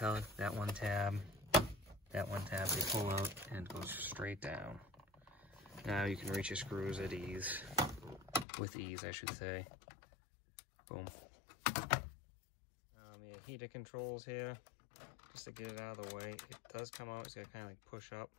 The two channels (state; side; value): drops out; right; at 8.5 s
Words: that one tab, they pull out and goes straight down. Now you can reach your screws at ease. With ease, I should say. Boom. Your heater controls here, just to get it out of the way. It does come out, it's got to kind of like push up.